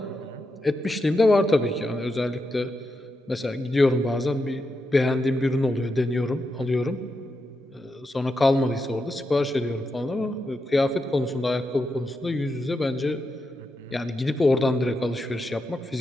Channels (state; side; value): normal; both; correlation 0.86